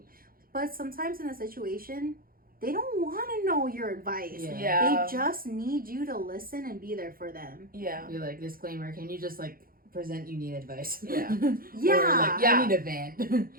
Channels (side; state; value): left; late; 0.42 ms